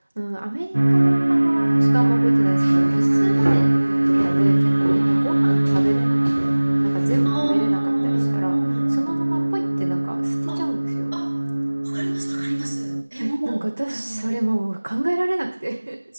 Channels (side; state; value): both; inverted; correlation -1.00